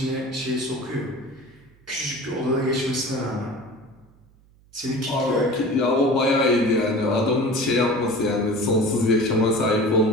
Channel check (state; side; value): noise; right; hum, 29 dB below the sound